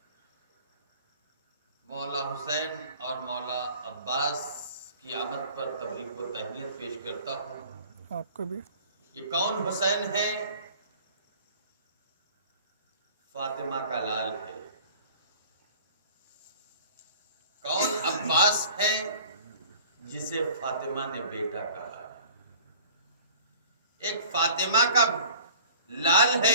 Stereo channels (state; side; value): inverted; both; correlation -0.47